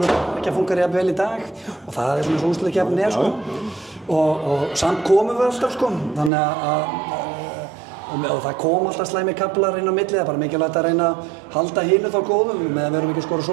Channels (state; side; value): drops out; left; at 6.3 s